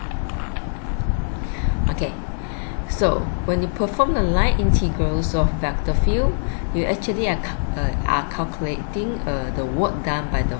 Okay, so when you perform the line integrals of vector field, you actually are calculating the work done by the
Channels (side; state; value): right; silent; 64 dB below the other